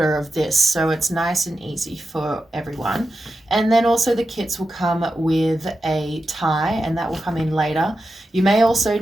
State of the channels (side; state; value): both; normal; correlation 0.90